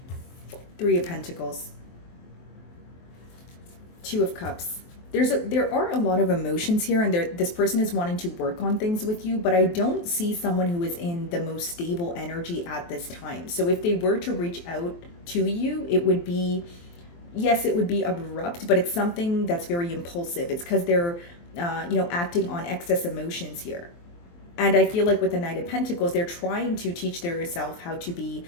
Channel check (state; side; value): late; right; 23 ms